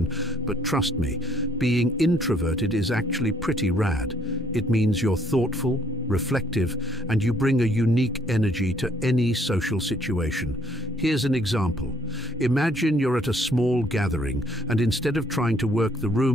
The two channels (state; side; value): normal; both; correlation 0.65